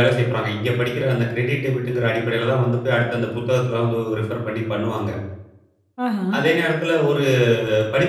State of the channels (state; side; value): identical; both; correlation 1.00